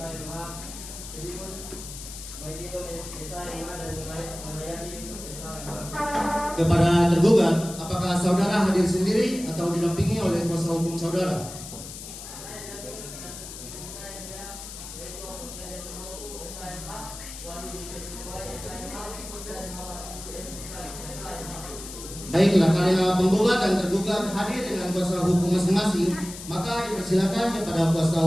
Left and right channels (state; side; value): noise; left; hiss, 12 dB below the sound